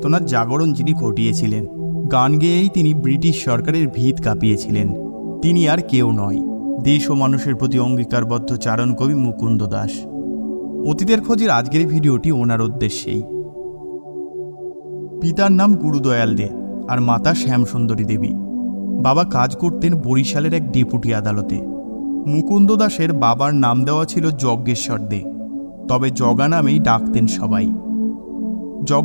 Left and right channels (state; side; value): inverted; both; correlation -1.00